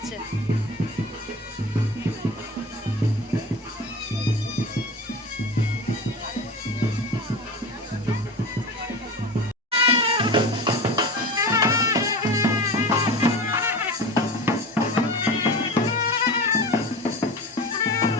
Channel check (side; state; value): both; normal; correlation 0.31